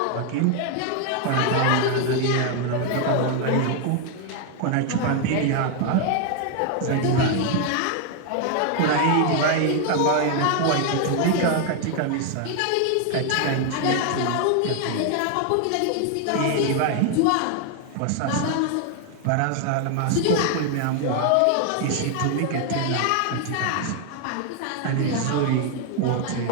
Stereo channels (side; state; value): both; different; correlation 0.01